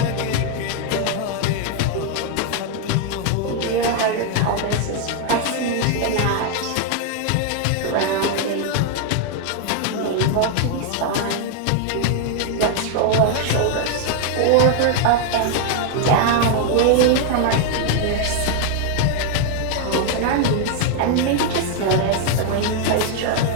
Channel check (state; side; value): different; both; correlation 0.00